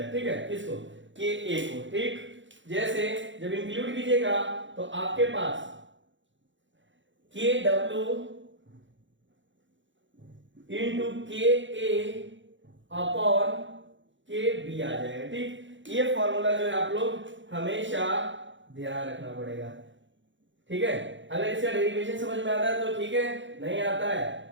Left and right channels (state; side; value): late; left; 0.54 ms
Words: ठीक है, किसको, के ए को। ठीक, जैसे जब इंक्लूड कीजिएगा तो आपके पास के डब्ल्यू इंटू के ए अपॉन के बी आ जाएगा। ठीक, ये फॉर्मूला जो है आप लोग हमेशा ध्यान रखना पड़ेगा। ठीक है, अगर इसका डेरिवेशन समझ में आता है तो ठीक है, नहीं आता है